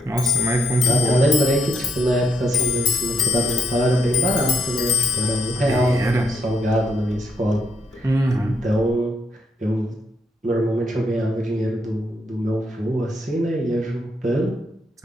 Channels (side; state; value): both; normal; correlation 0.75